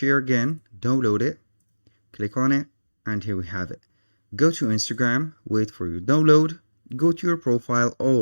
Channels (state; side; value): inverted; both; correlation -1.00